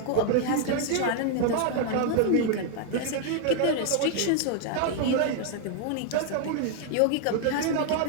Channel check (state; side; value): different; both; correlation 0.00